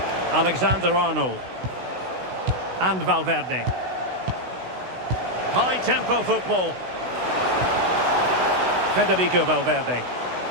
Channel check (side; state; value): left; late; 16 ms